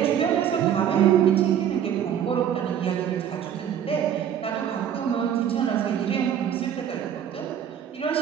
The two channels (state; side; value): quieter; left; 9.3 dB